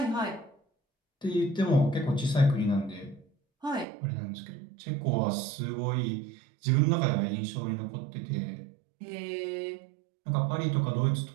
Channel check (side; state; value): left; drops out; at 3.9 s